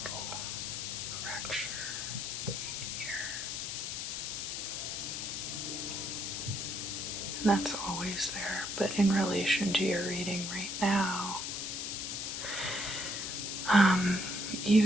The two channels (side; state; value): left; noise; hiss, 3 dB below the sound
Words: little fracture right here. And that's always there, but in relation to your reading right now,